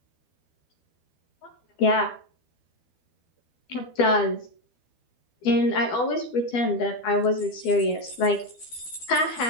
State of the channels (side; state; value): right; late; 12 ms